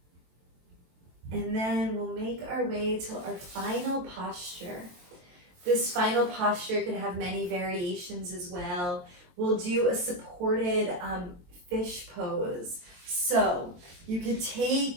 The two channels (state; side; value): late; left; 23 ms